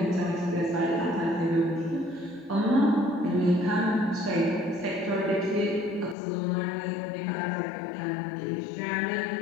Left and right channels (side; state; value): right; drops out; at 6.2 s